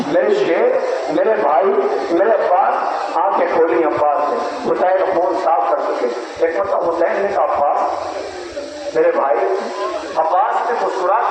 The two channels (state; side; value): identical; both; correlation 1.00